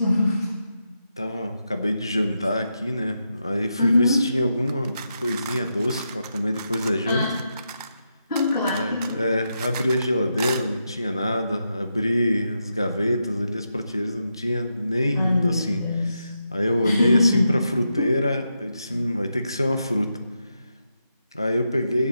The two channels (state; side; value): inverted; both; correlation -0.85